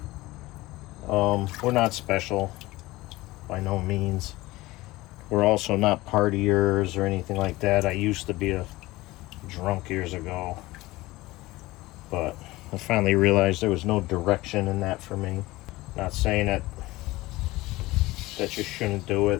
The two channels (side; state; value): right; quieter; 19.4 dB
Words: we're not special by no means. We're also not partiers or anything like that. I used to be a drunk years ago, but I finally realized there was no direction in that for me. Not saying that you shouldn't do